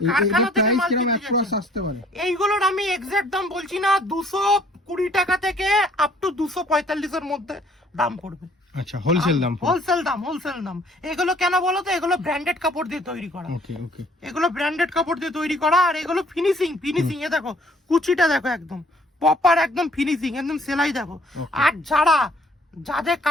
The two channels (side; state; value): both; normal; correlation 0.59